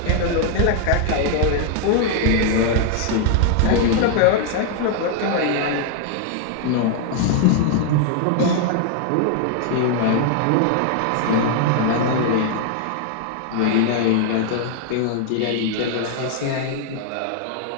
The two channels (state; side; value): different; both; correlation 0.00